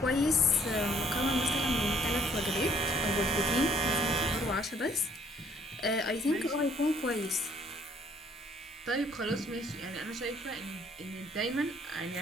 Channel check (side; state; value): both; normal; correlation 0.62